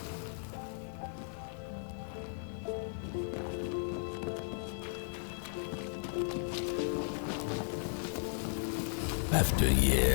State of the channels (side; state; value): right; silent; 54 dB below the other